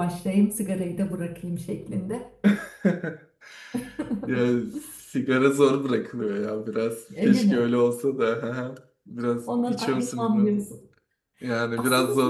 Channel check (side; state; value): both; identical; correlation 1.00